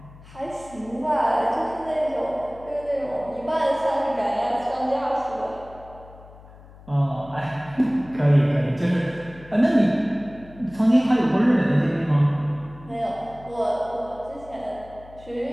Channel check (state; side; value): noise; left; hum, 21 dB below the sound